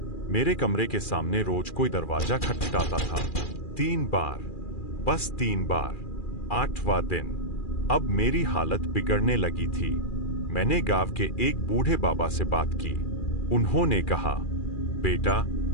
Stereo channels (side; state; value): right; late; 2.4 ms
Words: मेरे कमरे के सामने रोज कोई दरवाजा खटखटाता था। 3 बार, बस 3 बार। 8वां दिन अब मेरी हालत बिगड़ने लगी थी। मैंने गांव के एक बूढ़े बाबा से बात की। उन्होंने कहा, बेटा,